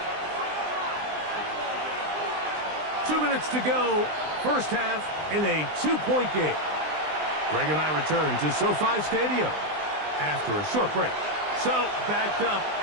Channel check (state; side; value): late; left; 20 ms